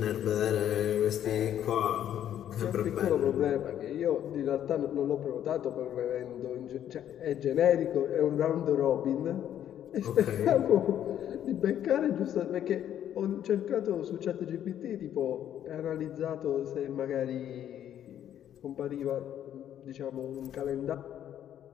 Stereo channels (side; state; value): right; quieter; 10.6 dB